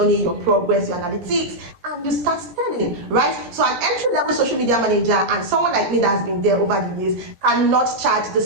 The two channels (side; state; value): left; late; 17 ms